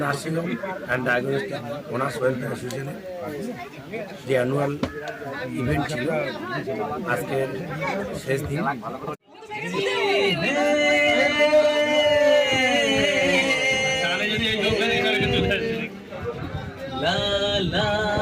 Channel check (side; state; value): both; identical; correlation 1.00